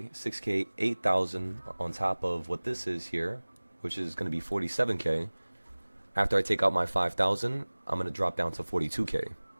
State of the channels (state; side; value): inverted; both; correlation -1.00